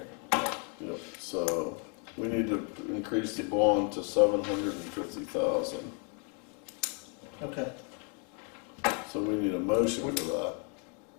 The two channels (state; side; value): quieter; right; 38.1 dB